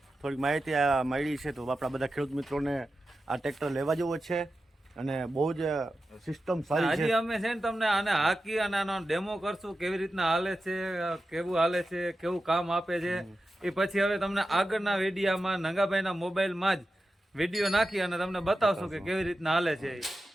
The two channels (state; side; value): normal; both; correlation 0.92